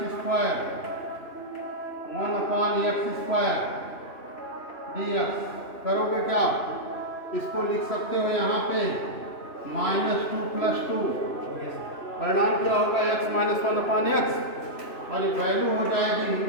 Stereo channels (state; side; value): late; right; 2.9 ms